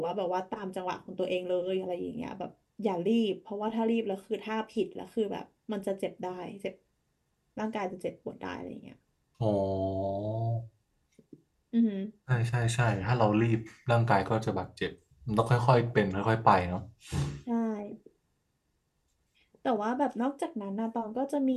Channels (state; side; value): identical; both; correlation 1.00